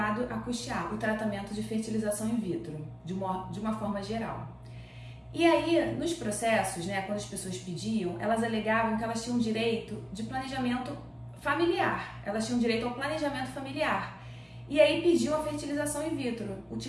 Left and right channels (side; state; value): both; identical; correlation 1.00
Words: a custear o tratamento de fertilização in vitro, de uma forma geral. E aí, nos processos, quando as pessoas pediam, elas alegavam que elas tinham direito de planejamento familiar, elas tinham direito ao planejamento familiar. E aí pediu a fertilização in vitro,